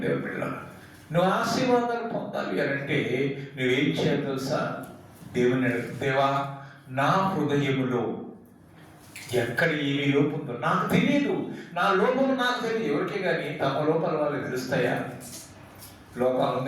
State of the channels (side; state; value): both; identical; correlation 1.00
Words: బిడ్డలారా, నువ్వు ఆశీర్వాదాలు పొందాలి అంటే నువ్వేం చేయాలి తెలుసా? దేవుని దేవా, నా హృదయములో ఎక్కడ ఏమి లోపం ఉందో నాకు తెలియదు, నా లోపం నాకు తెలియదు. ఎవరికే కానీ తమ లోపాలు వాళ్ళకి తెలుస్తాయా? లోపాలు